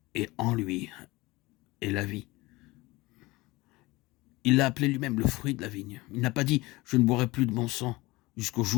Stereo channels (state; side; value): quieter; right; 21.5 dB